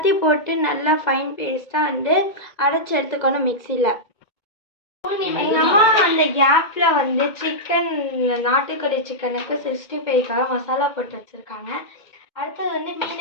போட்டு நல்லா ஃபைன் பேஸ்ட்டாக வந்து அரைச்சி எடுத்துக்கணும் மிக்சியில். எங்கள் அம்மா அந்த கேப்பில் வந்து நாட்டுக்கோழி சிக்கனுக்கு 65க்காக மசாலா போட்டு வச்சுருக்காங்க. அடுத்தது வந்து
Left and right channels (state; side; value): late; right; 2.2 ms